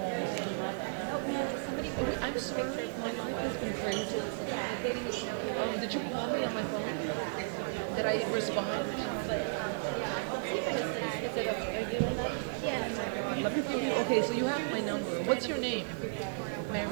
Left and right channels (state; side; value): silent; left; digital silence